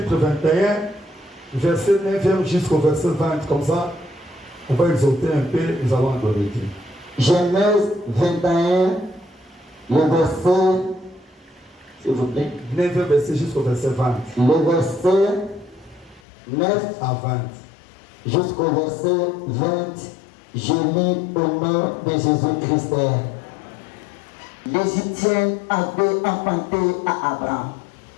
21, verset 9 jusqu'au verset 20. Comme ça, on va exalter un peu, nous allons adorer Dieu. Genèse 21, le verset, s'il vous plaît. 9 verset jusqu'au verset 20. Le verset 9 à 20. Jusqu'au verset 20, je lis au nom de Jésus-Christ. L'Égyptien avait enfanté à Abraham.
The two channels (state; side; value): drops out; right; at 16.2 s